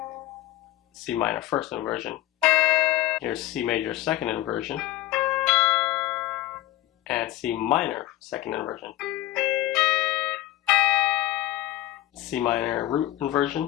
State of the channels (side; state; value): right; quieter; 15.6 dB